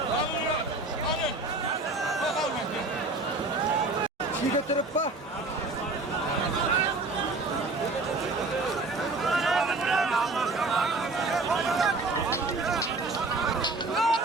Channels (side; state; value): left; quieter; 3.2 dB